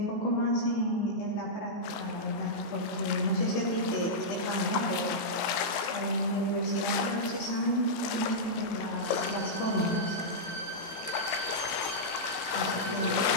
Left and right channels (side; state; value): right; late; 18 ms